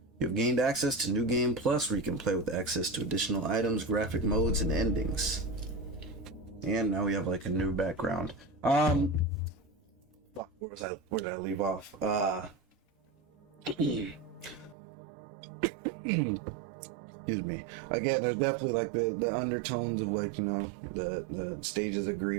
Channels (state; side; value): drops out; left; at 14.8 s